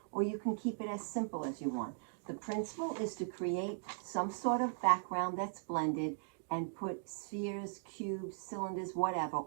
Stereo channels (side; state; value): left; silent; digital silence